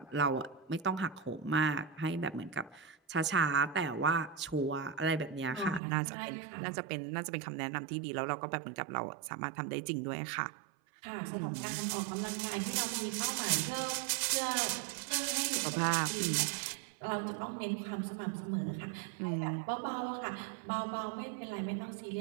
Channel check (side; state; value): left; drops out; at 5.8 s